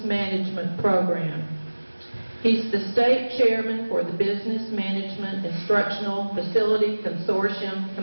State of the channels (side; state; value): both; inverted; correlation -1.00